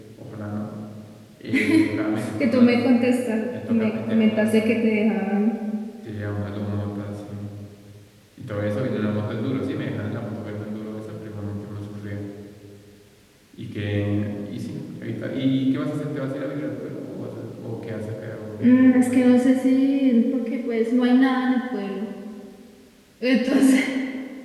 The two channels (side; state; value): both; identical; correlation 1.00